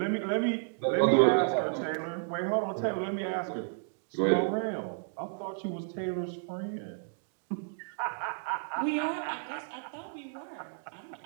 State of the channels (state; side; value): silent; left; digital silence